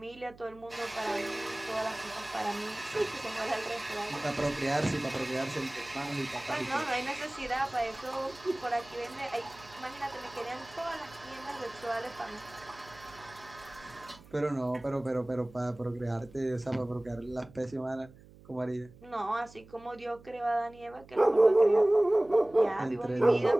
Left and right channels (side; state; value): right; noise; hum, 22 dB below the sound